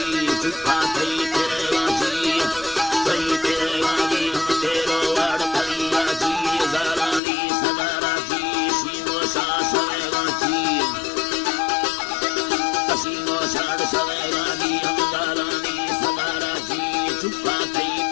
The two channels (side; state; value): right; drops out; at 7.2 s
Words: चुपा थई तेरा जी हम तेरो वाड़ कलिया जी जारानी सदारा जी सीनो सा सवेगा जी सीनो साड़ सवेगा जी हम जारानी सदारा जी चुपा थई